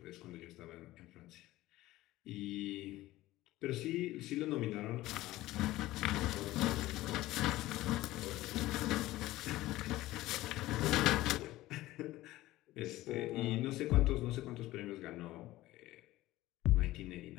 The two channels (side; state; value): right; quieter; 16.9 dB